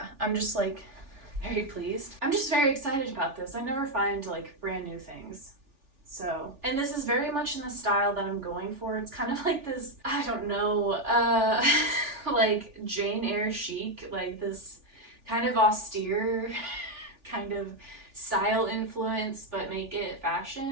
I'm just like very pleased. I'm just very excited about this. I never find like brand new things. So, and this is very much in the style that I'm going for. It's kind of like this, I don't know, like Jane Eyre chic, like this kind of austere kind of style influence, but make it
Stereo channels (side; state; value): left; late; 3.4 ms